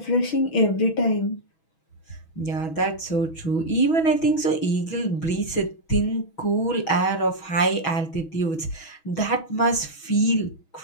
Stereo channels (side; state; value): right; late; 6.2 ms